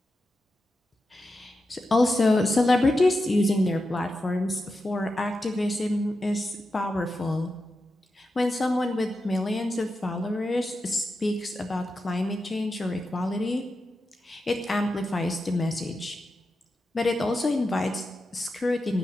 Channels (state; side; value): normal; both; correlation 0.89